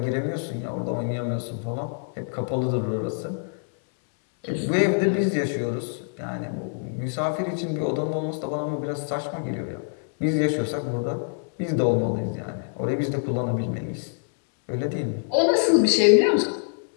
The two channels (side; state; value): right; silent; 61 dB below the other